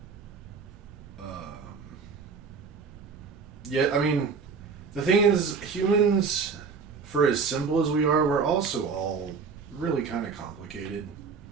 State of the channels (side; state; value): left; quieter; 5.3 dB